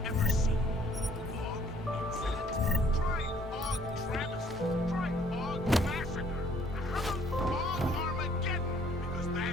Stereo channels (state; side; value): normal; both; correlation 0.61